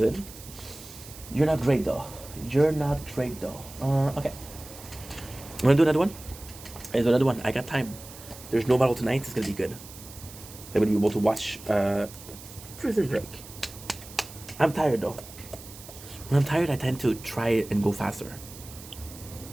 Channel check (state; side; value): noise; right; hiss, 16 dB below the sound